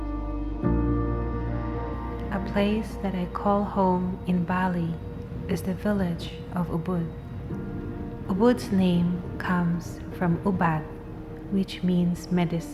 A place that I call home in Bali is the village of Ubud. Ubud's name comes from Ubud, which means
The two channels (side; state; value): both; identical; correlation 1.00